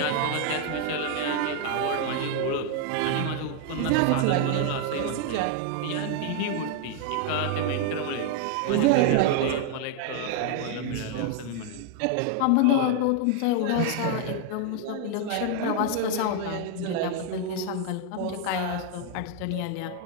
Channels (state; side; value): different; both; correlation 0.00